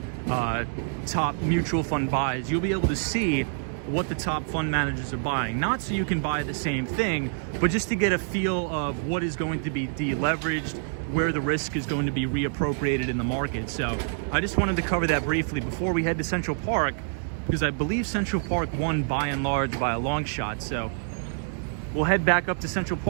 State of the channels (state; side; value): silent; left; digital silence